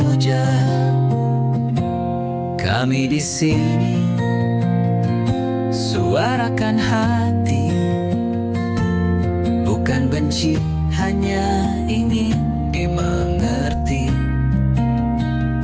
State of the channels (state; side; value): identical; both; correlation 1.00